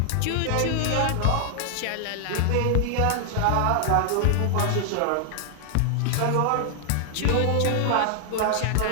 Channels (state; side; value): different; both; correlation 0.00